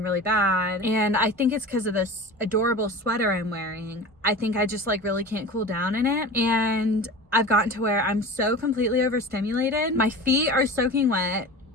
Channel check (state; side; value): normal; both; correlation 0.34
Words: really bad, and I think it's because of this adorable sweater I'm wearing. I think I just like really can't cool down in it, and I've gotten to where I'm so completely overstimulated. My feet are soaking wet,